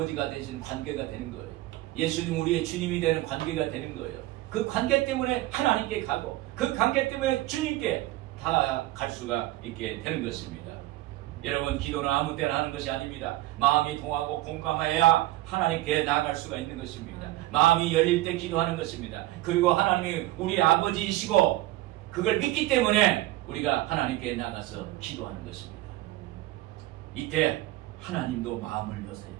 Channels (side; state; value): left; quieter; 17.0 dB